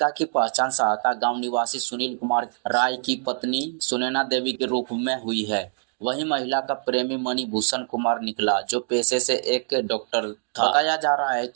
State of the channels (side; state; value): left; silent; 62 dB below the other